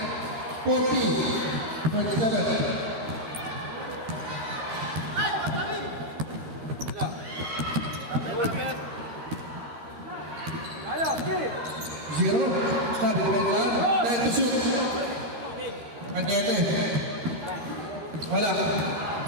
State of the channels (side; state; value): left; late; 13 ms